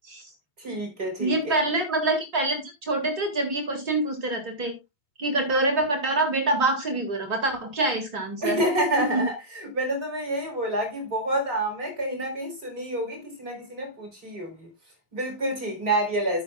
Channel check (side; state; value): left; late; 3.5 ms